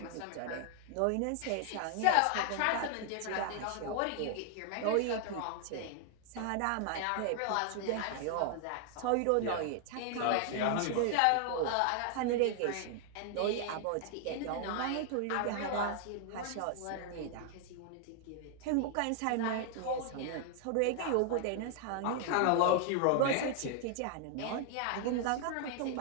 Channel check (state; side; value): different; both; correlation 0.00